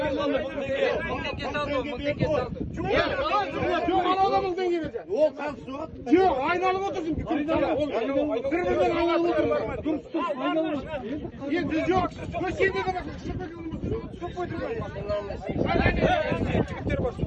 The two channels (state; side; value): identical; both; correlation 1.00